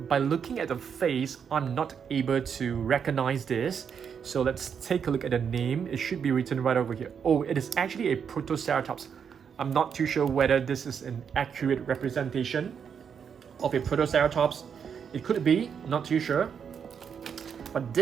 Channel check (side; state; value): left; quieter; 7.2 dB